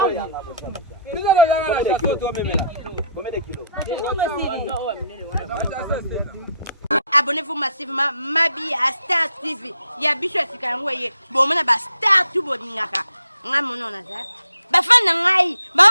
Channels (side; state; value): both; inverted; correlation -0.67